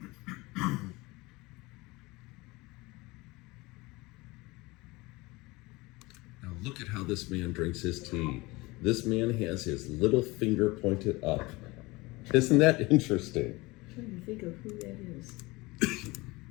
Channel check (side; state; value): right; quieter; 22.7 dB